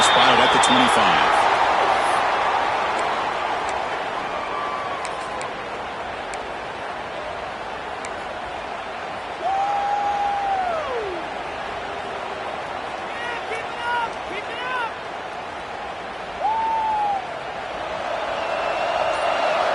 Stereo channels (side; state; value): both; identical; correlation 1.00